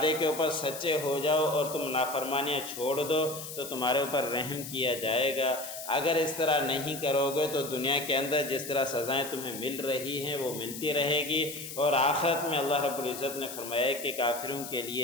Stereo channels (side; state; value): left; noise; hiss, 10 dB below the sound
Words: کے اوپر سچے ہو جاؤ اور تم نافرمانیاں چھوڑ دو تو تمہارے اوپر رحم کیا جائے گا۔ اگر اس طرح نہیں کرو گے تو دنیا کے اندر جس طرح سزائیں تمہیں مل رہی ہیں وہ ملتی رہے گی، اور آخرت میں اللہ رب العزت نے فرمایا کہ کافروں کے